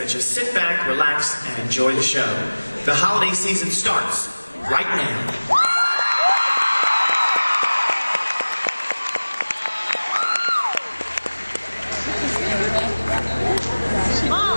you sit back, relax, and enjoy the show. The holiday season starts right now.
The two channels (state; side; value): inverted; both; correlation -1.00